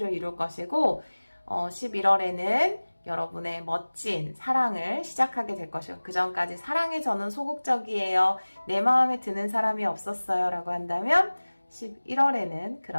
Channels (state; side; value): inverted; both; correlation -1.00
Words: 이룰 것이고 11월에는 여러분의 멋진 사랑을 시작하게 될 것이고 그 전까지 사랑에 저는 소극적이에요. 내 마음에 드는 사람이 없었어요. 라고 한다면 11월에는